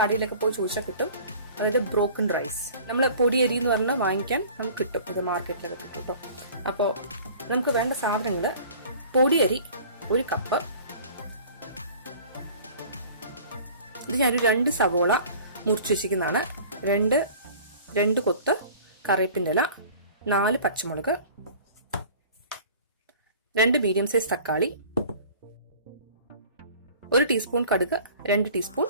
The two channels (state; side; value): inverted; both; correlation -0.46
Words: കടയിലൊക്കെ പോയി ചോദിച്ചാൽ കിട്ടും. അതായത് ബ്രോക്കൺ റൈസ്. നമ്മൾ പൊടിയരി എന്ന് പറഞ്ഞാൽ വാങ്ങിക്കാൻ നമുക്ക് കിട്ടും, അത് മാർക്കറ്റിലൊക്കെ കിട്ടും കേട്ടോ. അപ്പോൾ നമുക്ക് വേണ്ട സാധനങ്ങൾ: പൊടിയരി 1 കപ്പ്, ഇത് ഞാനൊരു 2 സവോള മുറിച്ച് വെച്ചിരിക്കുന്നതാണ്, 2 കൊത്ത് കറിവേപ്പിൻ്റെ ഇല, 4 പച്ചമുളക്, 2 മീഡിയം സൈസ് തക്കാളി, 1 ടീസ്പൂൺ കടുക്, 2 ടീസ്പൂൺ